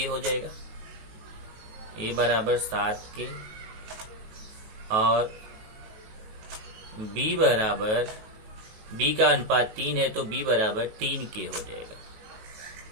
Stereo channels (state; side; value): late; left; 19 ms